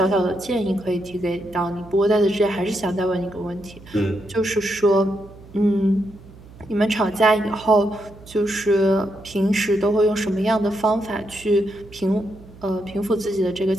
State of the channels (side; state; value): right; noise; hum, 21 dB below the sound